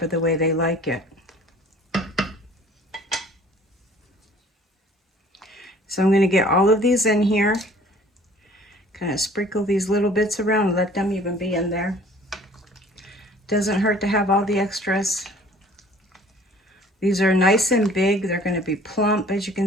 the way they like it. So I'm going to get all of these in here. Kind of sprinkle these little bits around and let them even be in there. Doesn't hurt to have all the extras. These are nice and big. They're going to be plump, as you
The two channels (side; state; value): both; normal; correlation 0.52